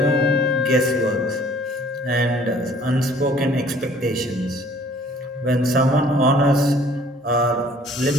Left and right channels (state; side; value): normal; both; correlation 0.55